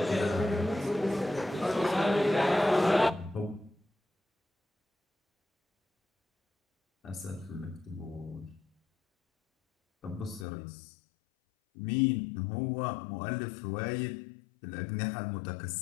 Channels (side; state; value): right; drops out; at 10.5 s